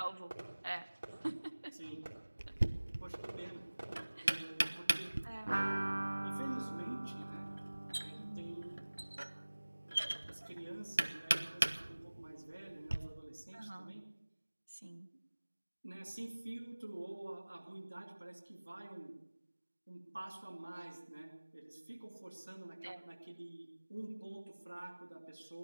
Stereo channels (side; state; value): both; inverted; correlation -1.00